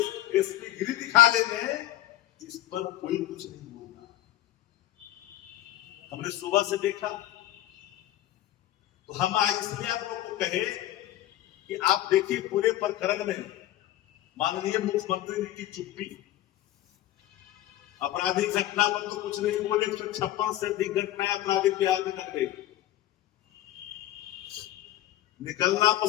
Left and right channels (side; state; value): right; quieter; 14.1 dB